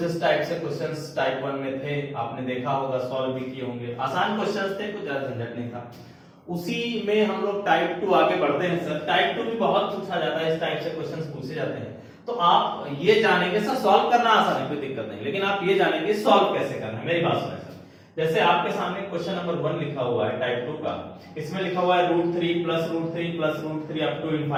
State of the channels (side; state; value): both; identical; correlation 1.00